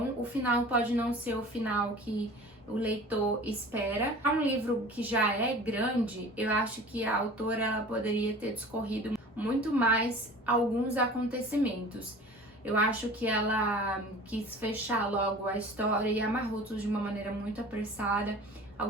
O final pode não ser o final que o leitor espera. É um livro que já é grande, eu acho que a autora ela poderia ter discorrido muito mais alguns acontecimentos. Eu acho que ela quis fechar logo a história e amarrou tudo de uma maneira muito apressada.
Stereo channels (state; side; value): normal; both; correlation 0.42